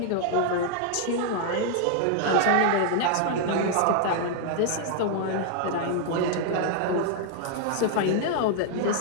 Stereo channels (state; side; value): different; both; correlation -0.01